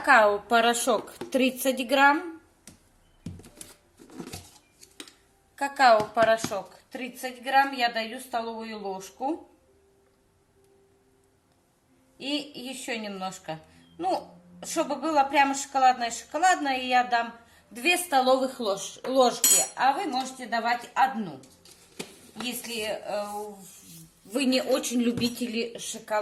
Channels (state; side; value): identical; both; correlation 1.00